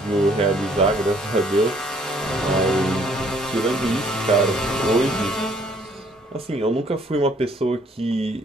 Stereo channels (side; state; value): both; normal; correlation 0.62